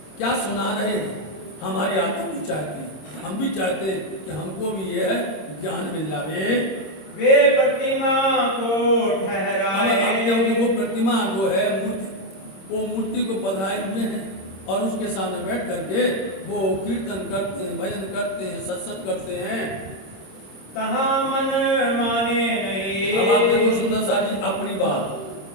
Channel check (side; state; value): right; late; 26 ms